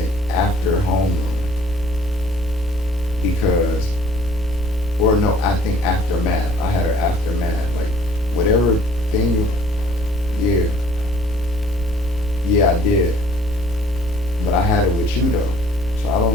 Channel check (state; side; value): normal; both; correlation 0.56